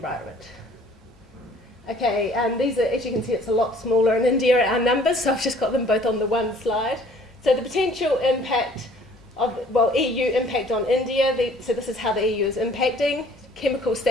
Okay, these are, as you can see, it's a lot smaller in India, our numbers, so I've just got them both on the one slide. So the potential impact of, EU impact on India, so this is how the EU is impacting, chemical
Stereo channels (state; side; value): normal; both; correlation 0.55